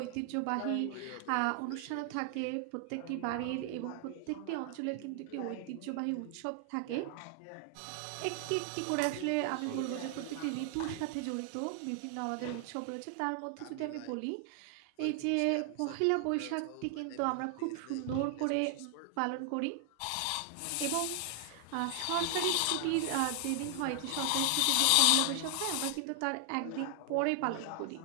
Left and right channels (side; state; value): both; different; correlation 0.00